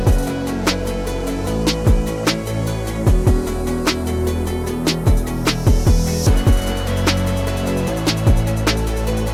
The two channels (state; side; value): identical; both; correlation 1.00